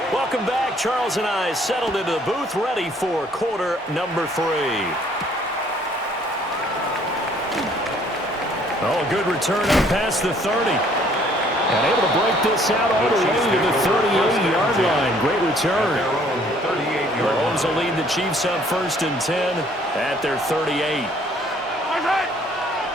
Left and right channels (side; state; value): both; normal; correlation 0.61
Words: Welcome back. Charles and I settled into the booth, ready for quarter number 3. Oh, a good return up past the 30. And able to break this out all the way to the 38-yard line. Great return. Mahomes will lead the Chiefs up 1st and 10 at their 38.